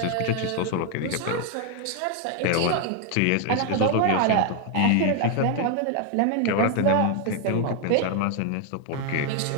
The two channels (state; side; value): different; both; correlation 0.00